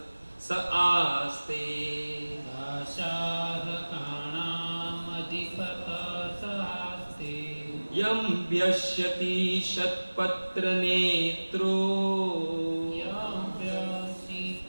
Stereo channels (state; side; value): inverted; both; correlation -1.00